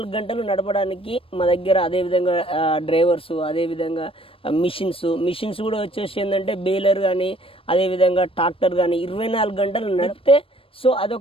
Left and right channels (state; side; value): late; right; 0.26 ms